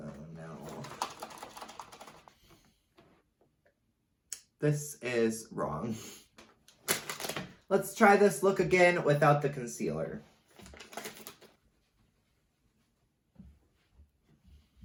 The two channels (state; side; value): identical; both; correlation 1.00